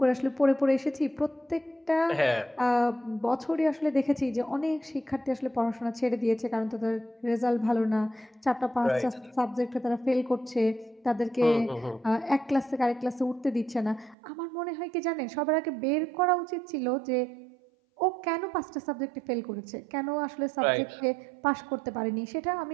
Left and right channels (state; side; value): drops out; left; at 14.2 s